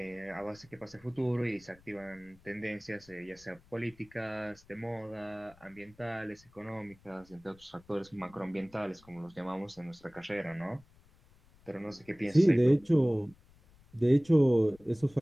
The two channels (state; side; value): noise; left; rumble, 27 dB below the sound